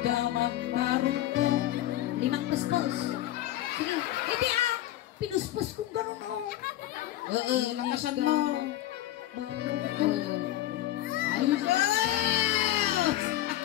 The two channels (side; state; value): right; quieter; 13.9 dB